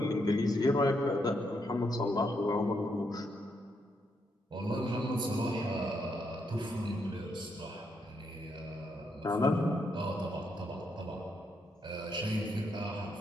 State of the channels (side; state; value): both; normal; correlation 0.78